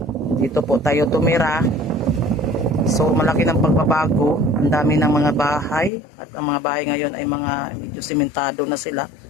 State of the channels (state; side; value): drops out; right; at 5.9 s